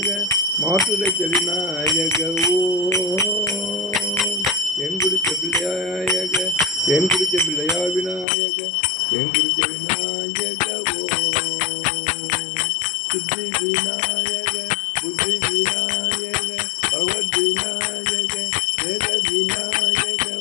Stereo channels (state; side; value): drops out; right; at 8.2 s